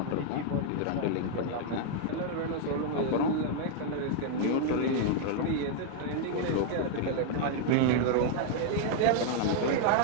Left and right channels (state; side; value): different; both; correlation 0.00